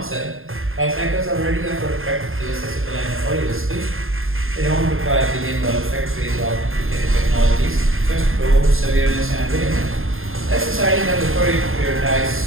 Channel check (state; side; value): late; left; 0.60 ms